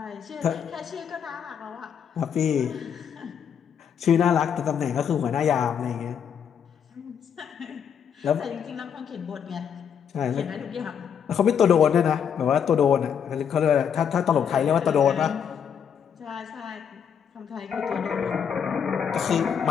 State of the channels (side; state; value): right; quieter; 7.8 dB